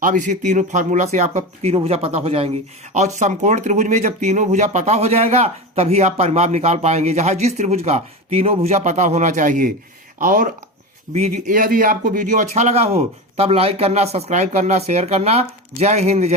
अब इसी तीनों फार्मूला से आपका तीनों भुजा पता हो जाएंगी, और समकोण त्रिभुज में जब तीनों भुजा पता हो जाएगा तभी आप परिमाप निकाल पाएंगे, जहां जिस त्रिभुज का तीनों भुजा पता होना चाहिए। और यदि आपको वीडियो अच्छा लगा हो तब लाइक करना, सब्सक्राइब करना, शेयर करना। जय हिंद,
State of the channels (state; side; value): normal; both; correlation 0.23